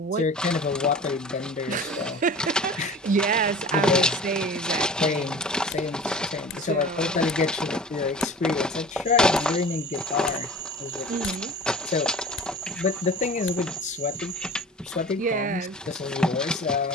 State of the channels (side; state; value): both; normal; correlation 0.40